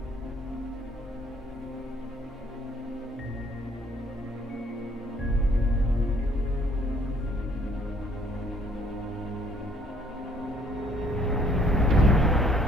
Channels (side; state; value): both; normal; correlation 0.63